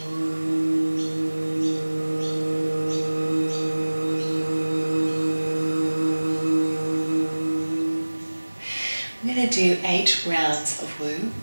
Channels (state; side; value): inverted; both; correlation -1.00